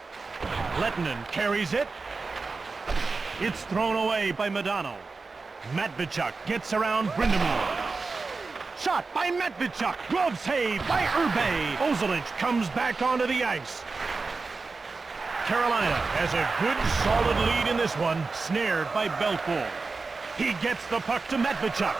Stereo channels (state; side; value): quieter; left; 4.1 dB